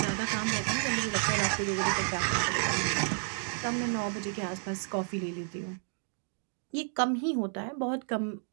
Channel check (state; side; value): silent; left; 57 dB below the other